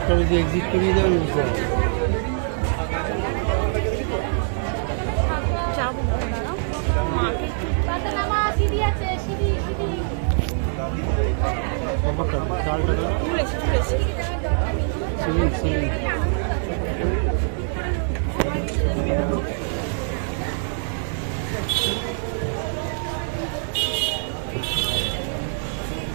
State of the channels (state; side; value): silent; left; digital silence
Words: যদি এক্সিট করিয়ে দেবেন বুঝতে হবে।